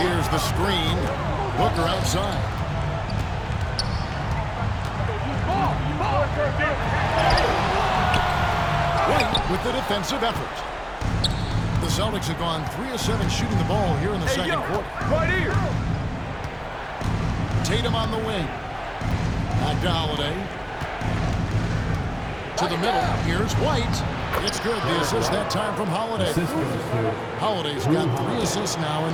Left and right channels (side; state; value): both; identical; correlation 1.00